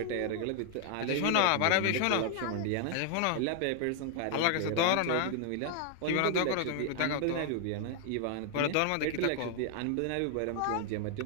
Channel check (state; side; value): different; both; correlation 0.00